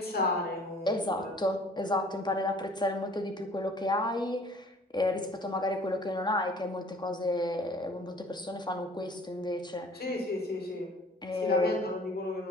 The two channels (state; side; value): normal; both; correlation 0.52